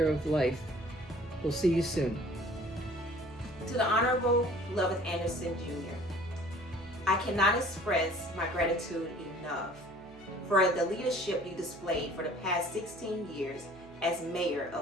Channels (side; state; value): right; noise; hum, 22 dB below the sound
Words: of life. We'll see you soon. To the Honorable Lovith Anderson Jr., I cannot express my gratitude enough for the leadership you displayed for the past 16 years as mayor